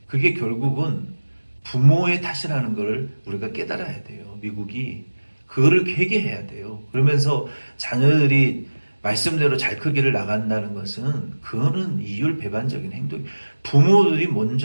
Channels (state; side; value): inverted; both; correlation -1.00